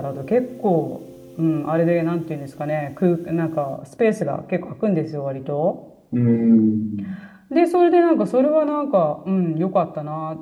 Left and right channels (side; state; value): both; identical; correlation 1.00